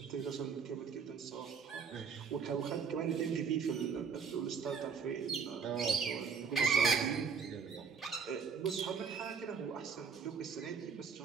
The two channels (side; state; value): left; quieter; 6.0 dB